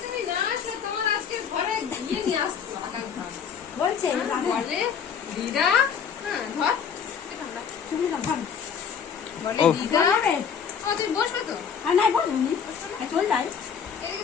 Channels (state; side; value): quieter; right; 7.1 dB